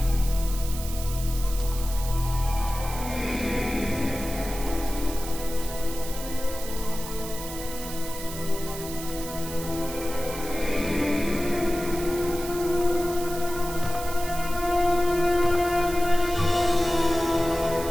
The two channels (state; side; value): noise; right; hiss, 11 dB below the sound